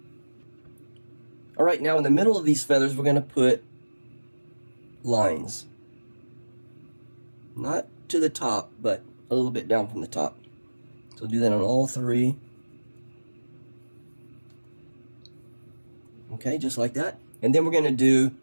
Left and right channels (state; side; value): inverted; both; correlation -1.00